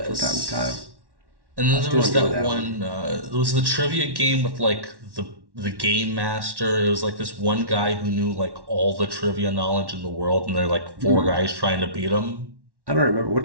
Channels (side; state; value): left; late; 1.1 ms